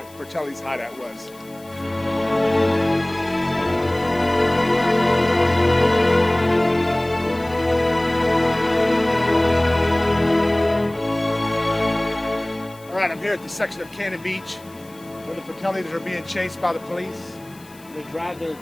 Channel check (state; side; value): noise; left; hiss, 25 dB below the sound